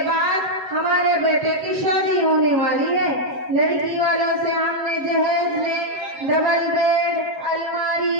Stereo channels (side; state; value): left; late; 7.6 ms